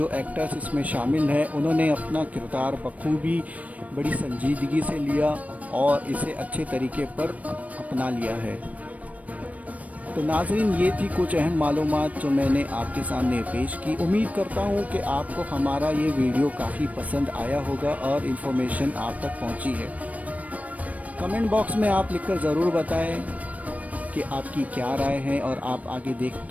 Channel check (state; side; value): late; left; 0.069 ms